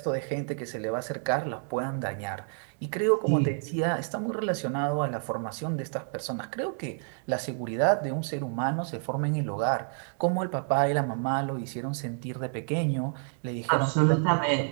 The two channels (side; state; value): left; silent; 59 dB below the other